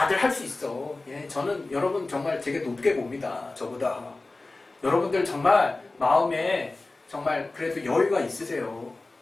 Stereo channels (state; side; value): quieter; right; 3.2 dB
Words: 할 수 있어. 예, 저는 여러분 정말 되게 높게 봅니다. 저보다. 여러분들 정말 마음에 정말 그래도 여유가 있으세요.